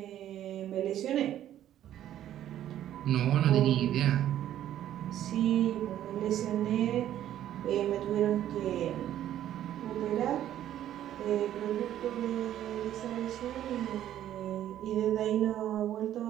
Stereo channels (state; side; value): quieter; left; 11.8 dB